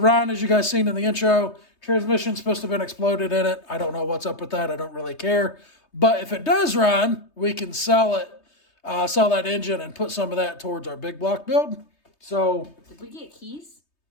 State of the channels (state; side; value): late; right; 3.2 ms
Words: as you guys seen in the intro. Transmission's supposed to have been exploded in it. I don't know what's up with that. I don't really care. But if it does run, we can sell it, sell that engine and put some of that towards our big block build. So did we get keys?